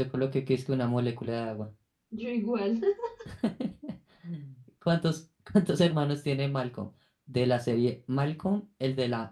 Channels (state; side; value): identical; both; correlation 1.00